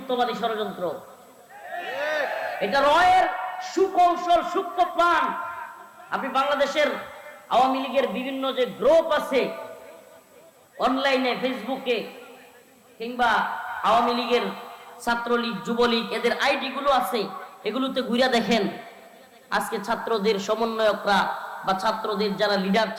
ষড়যন্ত্র, এটা রয়ের সুকৌশল, সূক্ষ্ম প্ল্যান। আপনি বাংলাদেশের আওয়ামী লীগের বিভিন্ন যে গ্রুপ আছে অনলাইনে, ফেসবুকে, কিংবা আওয়ামী লীগের ছাত্রলীগ, যুবলীগ, এদের আইডি গুলো আছে, এগুলোতে ঘুরে দেখেন আজকে ছাত্রদের সমন্বয়করা বা ছাত্রদের যারা লিডার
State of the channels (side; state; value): both; identical; correlation 1.00